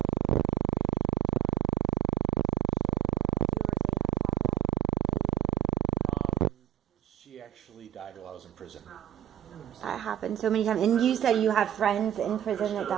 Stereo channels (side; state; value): left; quieter; 10.7 dB